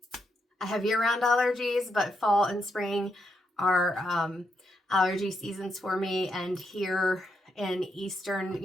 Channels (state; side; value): normal; both; correlation 0.80